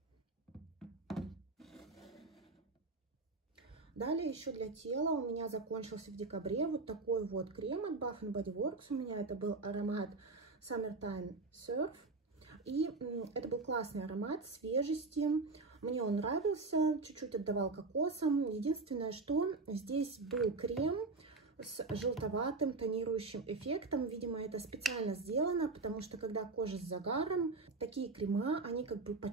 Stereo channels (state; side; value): quieter; left; 3.7 dB